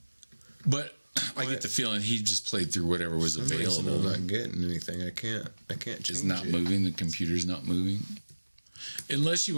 But I get the feeling he just played through whatever was available. I'm not getting anything. I can't It's not moving. The computer's not moving. Unless you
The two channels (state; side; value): inverted; both; correlation -1.00